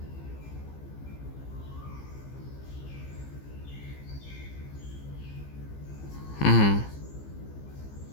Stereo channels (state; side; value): late; right; 15 ms